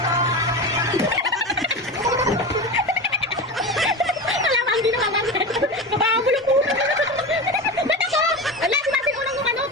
Alam, hindi na mamagay. Napakabulong po. Ba't ako? Ala, si Martin unang yung ano,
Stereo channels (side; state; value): both; normal; correlation 0.25